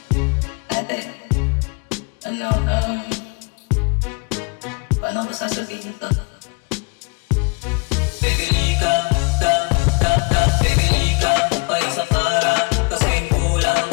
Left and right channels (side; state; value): right; quieter; 31.5 dB